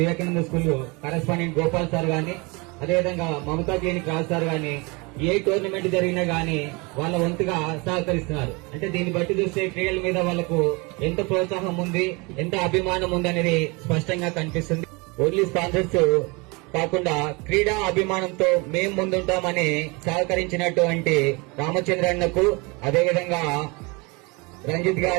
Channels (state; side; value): quieter; left; 27.5 dB